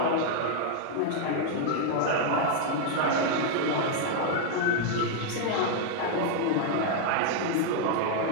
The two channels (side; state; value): both; different; correlation 0.00